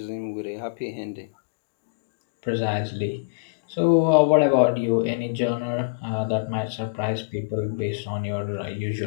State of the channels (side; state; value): right; quieter; 34.1 dB